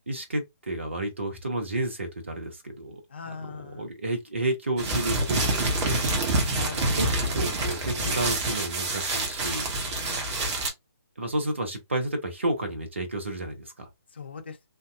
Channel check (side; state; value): both; inverted; correlation -0.45